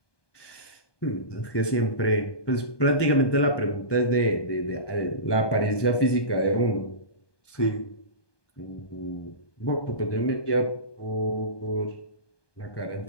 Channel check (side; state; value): right; late; 1.2 ms